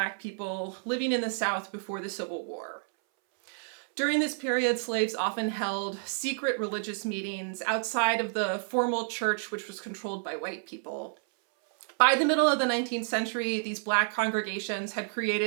people living in the South before the Civil War. During this period, slaves often held secret religious meetings outside of the formal church, which was controlled by white people. By the middle of the 19th century, these Black congregations had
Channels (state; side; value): silent; left; 58 dB below the other